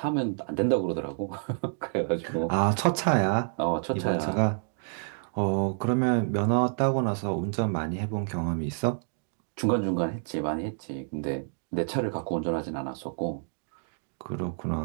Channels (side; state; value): left; silent; digital silence